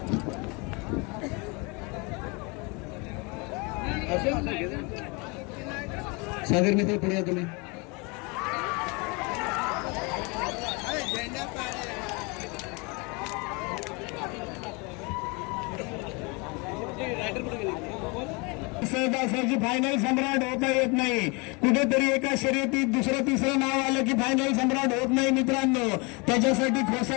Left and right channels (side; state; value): right; quieter; 29.1 dB